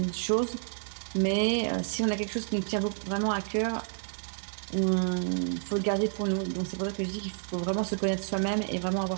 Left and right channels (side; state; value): left; silent; digital silence